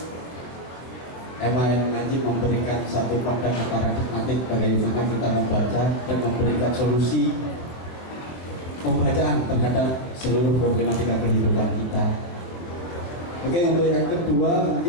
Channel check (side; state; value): right; late; 23 ms